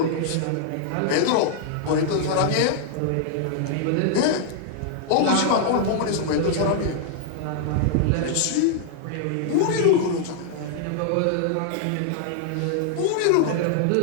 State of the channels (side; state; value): both; different; correlation 0.00